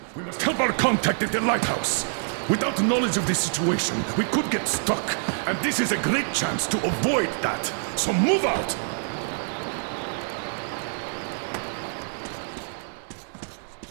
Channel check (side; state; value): left; silent; 61 dB below the other